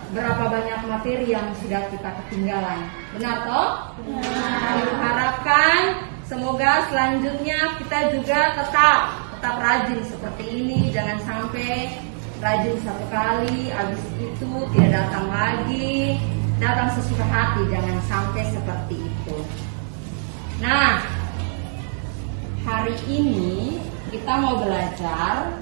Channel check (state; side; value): silent; left; digital silence